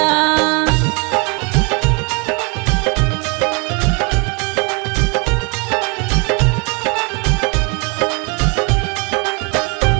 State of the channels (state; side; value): quieter; left; 32.1 dB